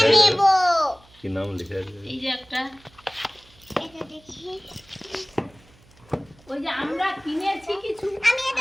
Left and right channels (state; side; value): noise; right; hum, 28 dB below the sound